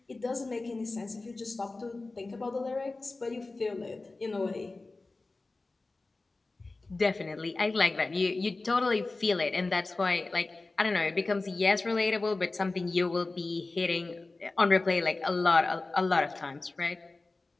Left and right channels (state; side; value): quieter; right; 3.4 dB